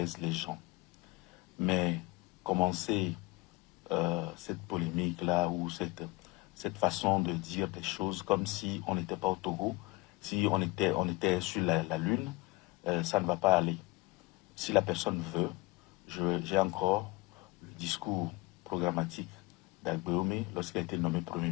les gens. Mais commencer cette polémique-là ou cette façon de dire des choses comme si on n'était pas au Togo, si on était sur la Lune, ça ne va pas aller. Si la personne veut, j'ai encore le discours programmatique d'Agboué lorsqu'il a été nommé Premier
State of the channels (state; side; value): quieter; right; 23.1 dB